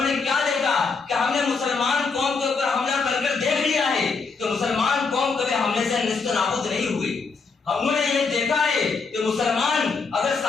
نے کیا دیکھا کہ ہم نے مسلمان قوم کے اوپر حملہ کر دیکھ لیا ہے کہ مسلمان قوم کبھی حملے سے نیست و نابود نہیں ہوئی۔ ہم نے یہ دیکھا ہے کہ مسلمان اگر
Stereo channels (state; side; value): quieter; right; 4.7 dB